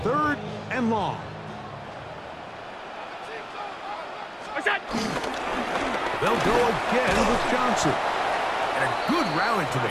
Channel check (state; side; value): identical; both; correlation 1.00